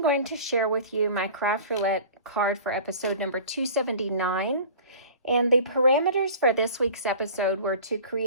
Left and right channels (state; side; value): inverted; both; correlation -0.42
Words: going to share with you my Craft Roulette card for episode number 279. And the parameters for this week's episode were to